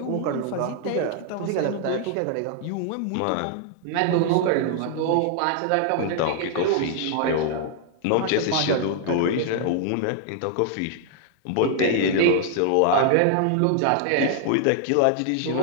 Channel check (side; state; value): both; different; correlation -0.01